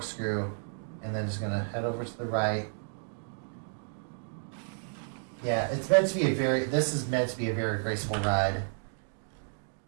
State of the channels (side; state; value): left; silent; digital silence